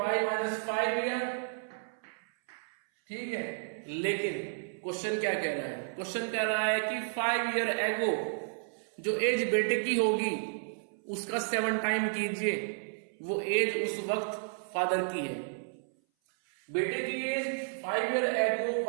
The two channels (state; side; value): silent; left; 56 dB below the other